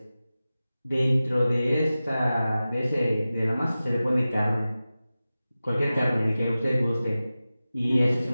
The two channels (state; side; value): inverted; both; correlation -0.95